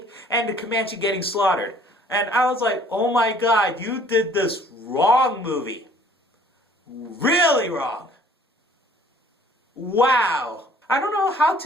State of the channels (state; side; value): normal; both; correlation 0.55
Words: and the Comanche getting slaughtered. And I was like, oh my god, you did this wrong, movie. Really wrong. Wow. I don't know how